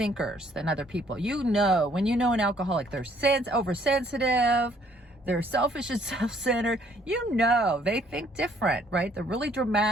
than other people. You know, when you know an alcoholic, they're oversensitive, they're selfish and self-centered. You know, they think different, right? They're really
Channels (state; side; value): normal; both; correlation 0.63